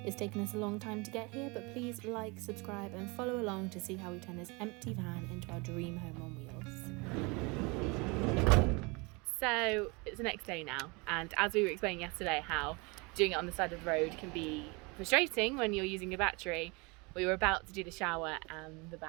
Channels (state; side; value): quieter; left; 28.1 dB